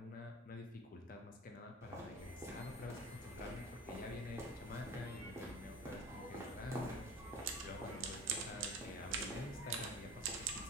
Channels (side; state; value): both; normal; correlation 0.36